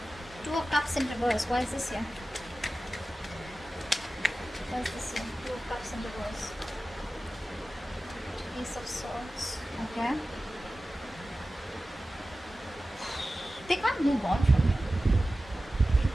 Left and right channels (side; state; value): both; normal; correlation 0.95